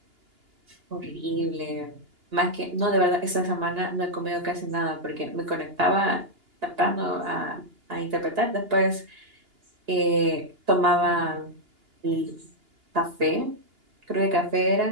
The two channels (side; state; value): left; late; 2.8 ms